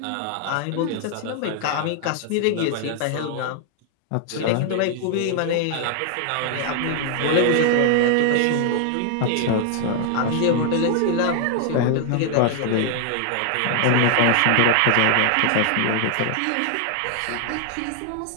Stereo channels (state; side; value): different; both; correlation 0.00